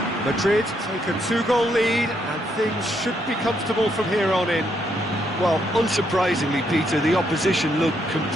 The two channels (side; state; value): both; normal; correlation 0.75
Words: Madrid take a 2-goal lead, and things should be comfortable from here on in. Well, unsurprisingly, Peter, the opposition look